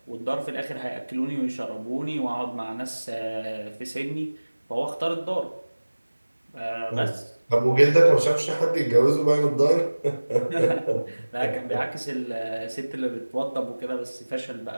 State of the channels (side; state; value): both; inverted; correlation -1.00